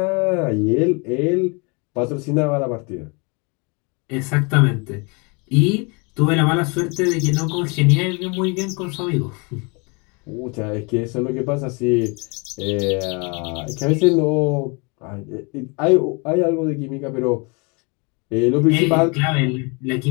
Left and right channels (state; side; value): quieter; right; 31.3 dB